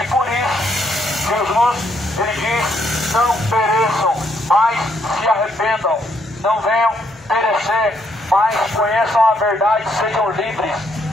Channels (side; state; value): both; normal; correlation 0.73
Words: por isso, Jesus, ele diz, não pereçam, mas se arrependam, não venham perecer, mas conheçam a verdade, sejam livres.